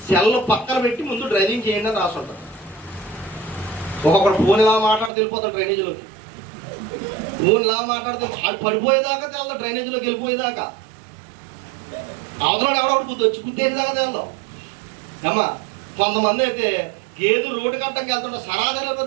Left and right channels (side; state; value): left; drops out; at 5.1 s